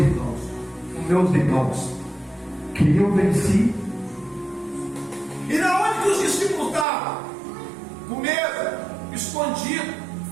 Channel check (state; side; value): drops out; left; at 6.9 s